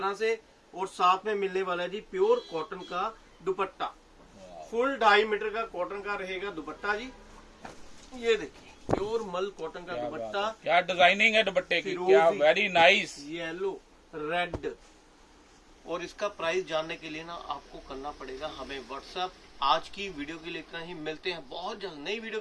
से, और साथ में मिलने वाला है जी प्योर कॉटन का दुपट्टा। फुल 2.5 मीटर का कॉटन का रहेगा दुपट्टा जी। ये देखिए प्योर मल कॉटन का दुपट्टा, क्या डिजाइनिंग है दुपट्टे की, फिरोजी, क्या वेरी नाइस। Yellow, red. और इसका प्राइस जानने के लिए ना आपको करना पड़ेगा हमें व्हाट्सएप। आज की वीडियो के लिए इतना ही, मिलते हैं बहुत जल्द नई वीडियो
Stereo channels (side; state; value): both; identical; correlation 1.00